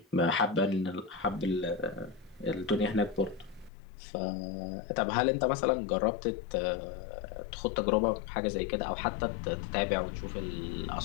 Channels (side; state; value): right; drops out; at 3.7 s